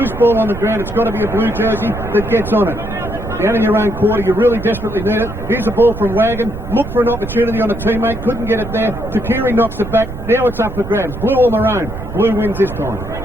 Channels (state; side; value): noise; right; rumble, 9 dB below the sound